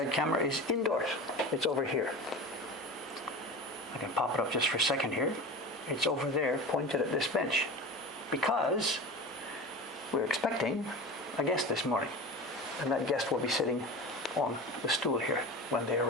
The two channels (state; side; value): normal; both; correlation 0.31